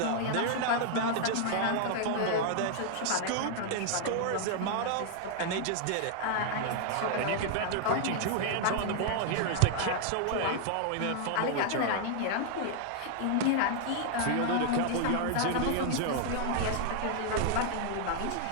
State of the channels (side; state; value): both; different; correlation 0.00